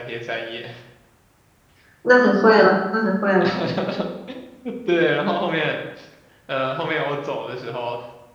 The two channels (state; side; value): identical; both; correlation 1.00